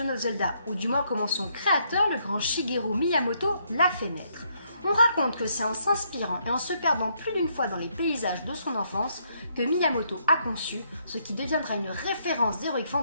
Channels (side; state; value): both; inverted; correlation -0.73